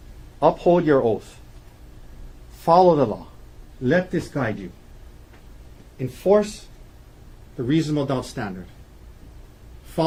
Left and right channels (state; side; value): identical; both; correlation 1.00